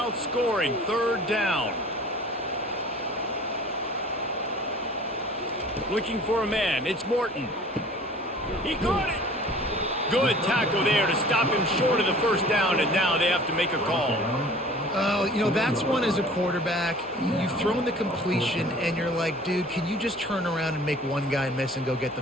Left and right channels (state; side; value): normal; both; correlation 0.47